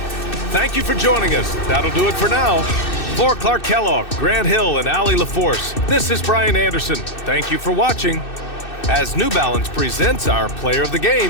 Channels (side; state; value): right; late; 2.6 ms